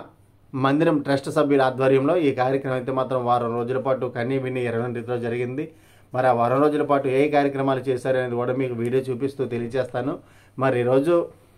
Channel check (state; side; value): identical; both; correlation 1.00